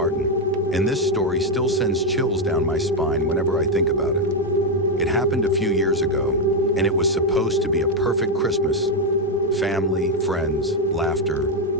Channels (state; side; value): normal; both; correlation 0.04